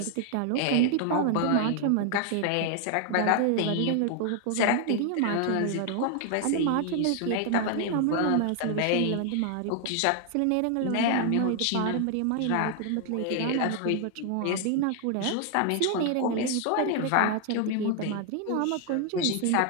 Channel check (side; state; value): both; different; correlation 0.00